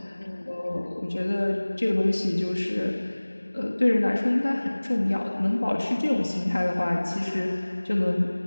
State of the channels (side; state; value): both; inverted; correlation -1.00